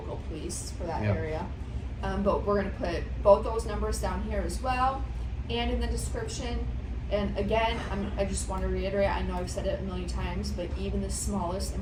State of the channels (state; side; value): identical; both; correlation 1.00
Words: police for that area. But we're going to put both those numbers down here as well, and in the description. And again, I just want to reiterate, I know I've said it a million times, but even the smallest